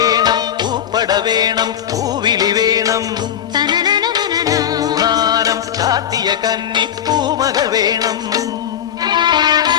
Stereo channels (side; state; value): right; quieter; 9.8 dB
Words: പൂപ്പട വേണം പൂവിളി വേണം പൂനാനം ചാത്തിയ കന്നി പൂമകൾ വേണം